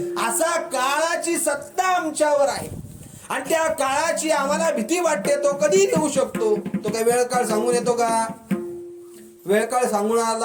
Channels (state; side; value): identical; both; correlation 1.00